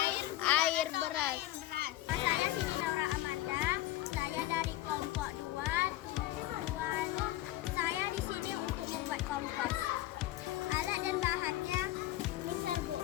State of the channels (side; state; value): right; quieter; 15.5 dB